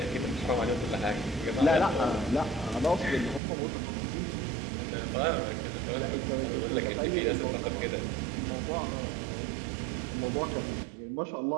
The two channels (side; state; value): left; drops out; at 3.4 s